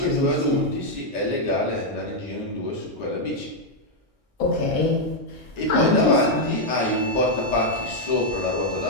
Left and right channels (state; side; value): normal; both; correlation -0.01